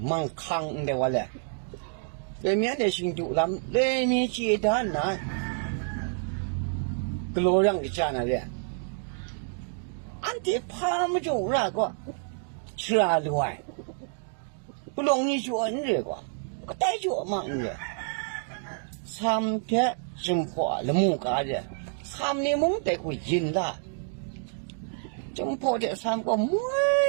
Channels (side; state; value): left; silent; 59 dB below the other